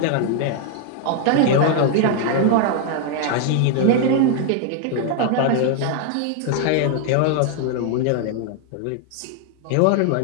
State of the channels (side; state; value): both; different; correlation 0.00